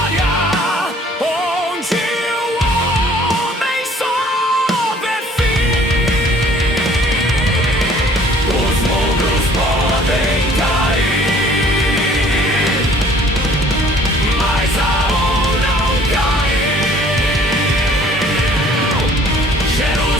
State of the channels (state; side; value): normal; both; correlation 0.55